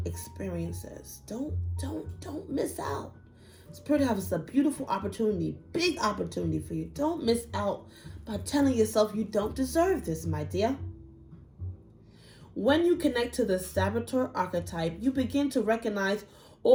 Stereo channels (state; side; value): identical; both; correlation 1.00